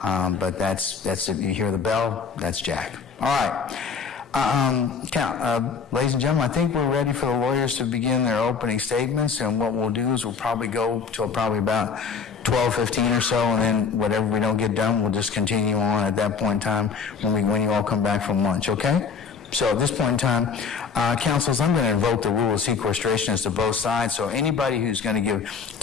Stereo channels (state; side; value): quieter; right; 5.7 dB